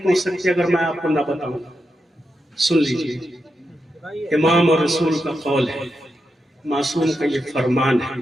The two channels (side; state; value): both; normal; correlation 0.86